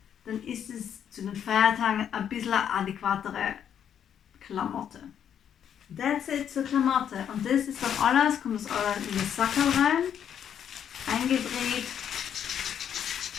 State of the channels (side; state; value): right; quieter; 8.9 dB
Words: dann ist es zu den Feiertagen ein bisschen eine adäquatere Klamotte. That's it zur Klamotte. Und das ist dann alles, kommt das alles in das Sackerl rein, eingedreht,